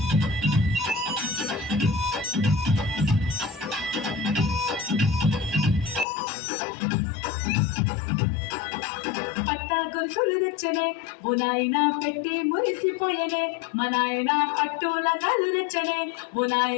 పట్టా గొలుసులు తెచ్చనే ఓ నాయన పెట్టి మురిసిపోయనే మా నాయన పట్టుల నలు తెచ్చనే ఓ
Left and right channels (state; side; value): drops out; right; at 6.1 s